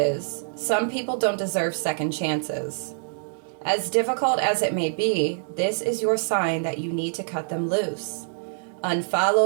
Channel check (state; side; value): silent; left; digital silence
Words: some people don't deserve second chances. As difficult as it may be, this is your sign that you need to cut them loose.